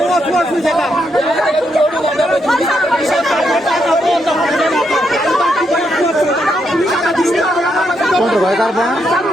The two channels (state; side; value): normal; both; correlation 0.79